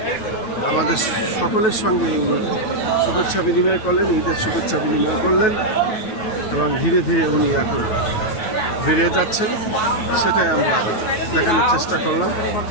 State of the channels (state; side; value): late; right; 9.3 ms